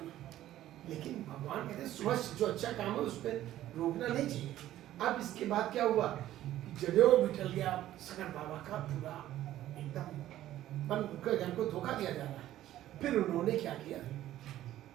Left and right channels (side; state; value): left; quieter; 13.5 dB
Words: लेकिन भगवान कहते हैं सुबह जो अच्छा काम है उस पर रोकना नहीं चाहिए। अब इसके बाद क्या हुआ कि जनेऊ भी टल गया, सकल बाबा का पूरा एकदम मन को धोखा दिया जा रहा है। फिर उन्होंने क्या किया,